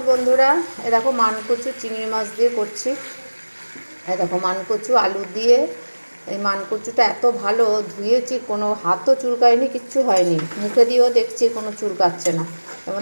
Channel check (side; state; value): both; inverted; correlation -1.00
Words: বন্ধুরা। এ দেখো মানকচু চিংড়ি মাছ দিয়ে করছি। এ দেখো মানকচু আলু দিয়ে। এই মানকচুটা এত ভালো ধুয়েছি, কোনো হাতও চুলকায়নি, কিচ্ছু হয়নি। মুখে দিয়েও দেখছি কোনো চুলকাচ্ছে না। এর